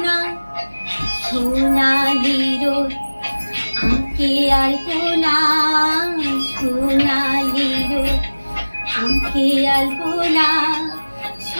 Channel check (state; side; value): inverted; both; correlation -1.00